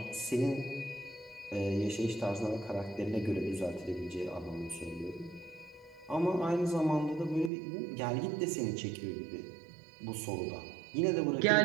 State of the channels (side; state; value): left; drops out; at 7.5 s